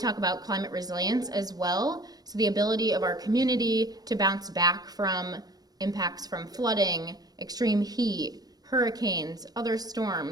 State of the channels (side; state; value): left; late; 0.19 ms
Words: about climate resilience as well. So the ability of our community to bounce back from impacts from flooding, extreme heat, hurricanes, other